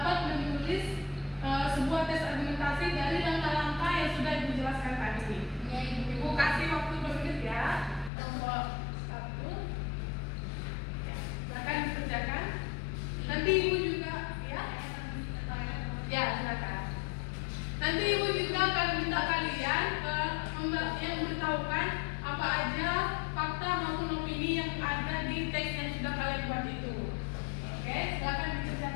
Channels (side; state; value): right; drops out; at 8.1 s